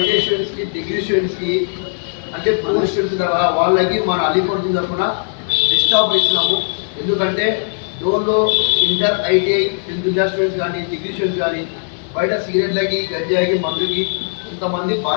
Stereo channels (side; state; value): right; silent; 67 dB below the other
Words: students కి degree students కి అంటే పోస్ట్ స్టూడెంట్స్ వాళ్ళకి మన అలీపూర్ తరఫున బెస్ట్ ఆఫర్ ఇస్తున్నాము. ఎందుకంటే డోర్లో inter ITI 10th class students కానీ డిగ్రీ స్టూడెంట్స్ కానీ బయట సిగరెట్లకి గంజాయికి మందుకి ఇంతమంది